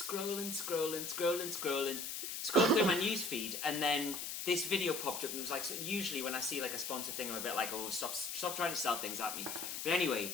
through my news feed, and then this video popped up, and it was like, so usually when I see like a sponsor thing, I'm a bit like, oh, stop trying to sell things at me. But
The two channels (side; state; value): left; noise; hiss, 5 dB below the sound